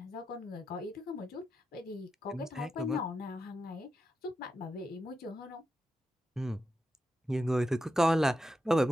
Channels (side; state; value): both; normal; correlation 0.88